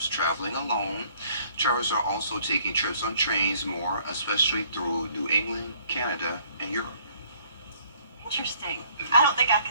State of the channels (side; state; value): both; inverted; correlation -0.61